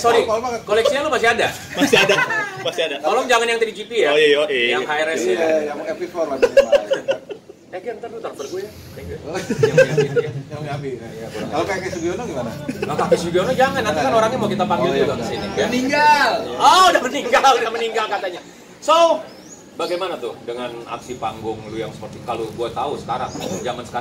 Koleksinya lu masih ada? Masih ada. Masih ada. Tolong jangan yang 3GP ya. Oh iya. Yang HRS ya. Iya, yang MP4 lah minimal. Kan ntar lu transfer gue ya. Thank you. Yang Miyabi. Kalau kayak Sugiono gimana? Nah, Kakek Sugiono jangan, nanti kan orangnya mau kita panggil juga ke sini. Ya? Meninggal. Oh, udah meninggal katanya. So, bagaimana tuh dengan aksi panggung lu yang seperti kalau gue tahu sekarang, zaman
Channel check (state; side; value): identical; both; correlation 1.00